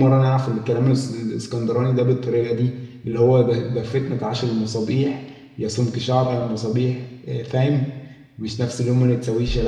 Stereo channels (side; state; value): both; identical; correlation 1.00